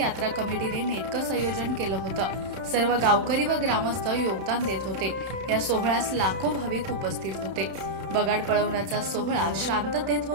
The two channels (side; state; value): left; late; 32 ms